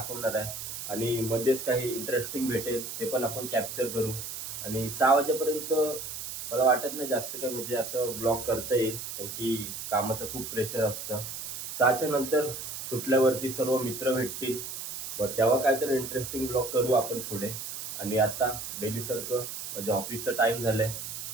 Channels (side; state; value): right; noise; hiss, 7 dB below the sound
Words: आहे आणि मध्येच काही इंटरेस्टिंग भेटेल ते पण आपण कॅप्चर करू. आणि 6 वाजेपर्यंत मला वाटत नाही जास्त काय म्हणजे असं ब्लॉग करता येईल, कारण की कामाचं खूप प्रेशर असतं. 6च्या नंतर सुटल्यावरती सर्व मित्र भेटतील, बरं तेव्हा काहीतरी इंटरेस्टिंग ब्लॉग करू आपण पुढे. आणि आता डेलीसारखं म्हणजे ऑफिसचं टाईम झालं आहे,